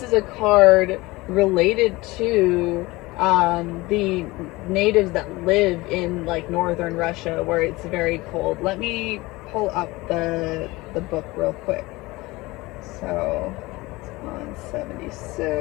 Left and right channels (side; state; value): right; quieter; 21.3 dB